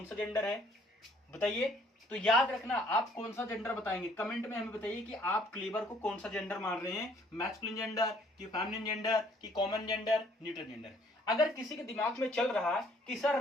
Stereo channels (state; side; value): normal; both; correlation 0.62